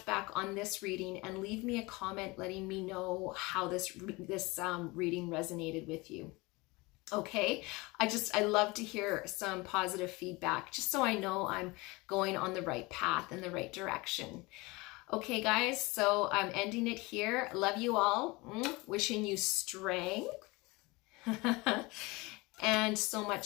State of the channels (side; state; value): right; quieter; 23.9 dB